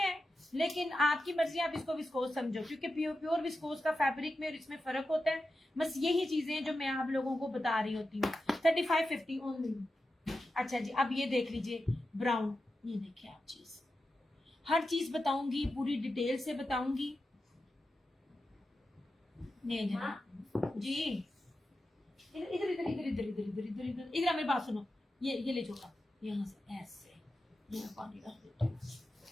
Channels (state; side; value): normal; both; correlation 0.91